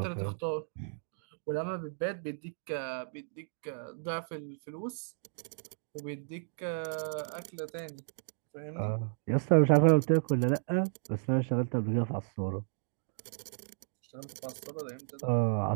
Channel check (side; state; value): left; silent; digital silence